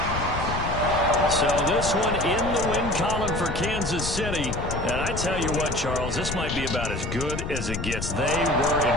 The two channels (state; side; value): noise; left; rumble, 5 dB below the sound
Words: So this one in the win column for Kansas City. And I tell you what, Charles, this might be about as good as it gets. They were